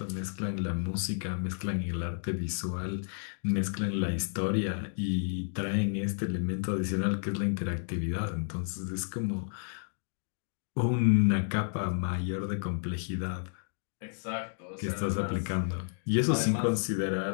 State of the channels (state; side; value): silent; right; digital silence